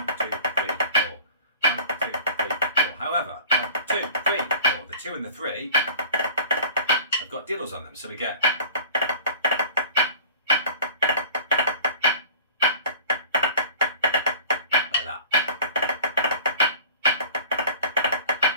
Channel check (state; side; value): inverted; both; correlation -0.43